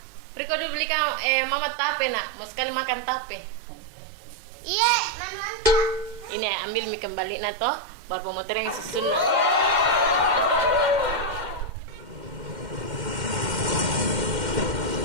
Riko dibelikan mama tape nak, mau sekali makan tape. Iya, mantap. Ini ambil mie kembali na toh, baru pemotor yang susun.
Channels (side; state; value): left; late; 2.1 ms